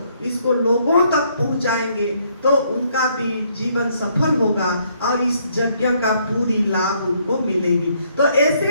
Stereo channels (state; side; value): inverted; both; correlation -0.69